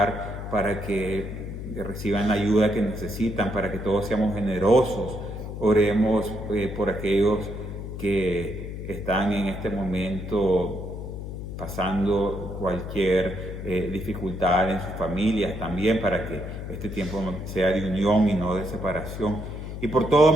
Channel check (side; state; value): left; noise; hum, 8 dB below the sound